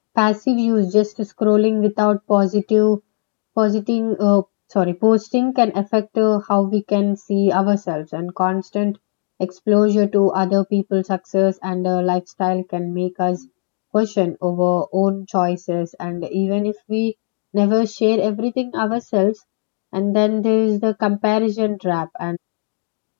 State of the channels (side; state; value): right; silent; 67 dB below the other